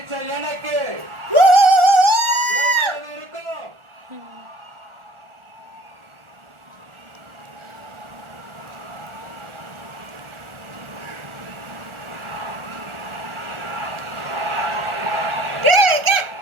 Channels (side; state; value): left; late; 1.4 ms